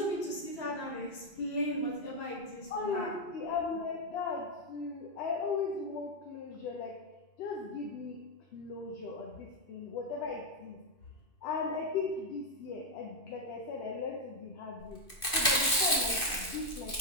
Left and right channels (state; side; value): late; right; 2.6 ms